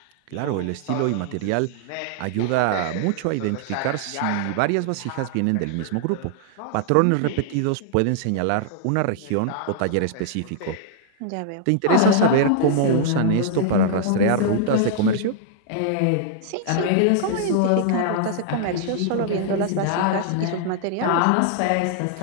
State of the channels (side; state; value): both; different; correlation -0.01